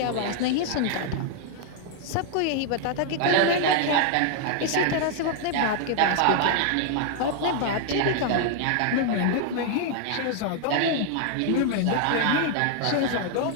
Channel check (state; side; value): different; both; correlation 0.00